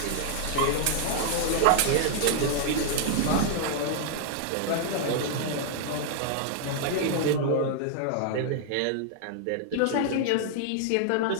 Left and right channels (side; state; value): both; different; correlation 0.00